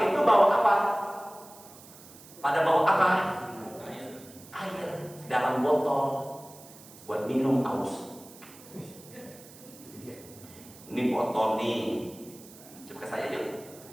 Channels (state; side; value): noise; right; hiss, 20 dB below the sound